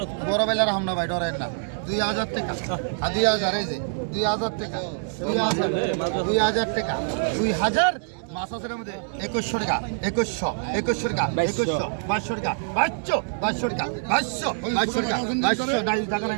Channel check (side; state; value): left; silent; digital silence